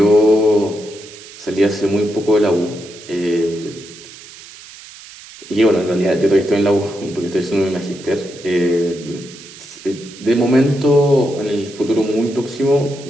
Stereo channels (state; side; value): noise; right; hiss, 18 dB below the sound